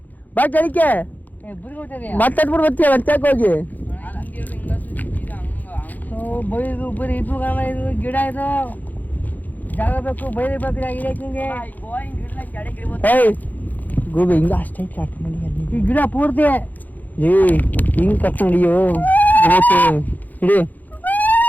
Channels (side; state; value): right; late; 0.082 ms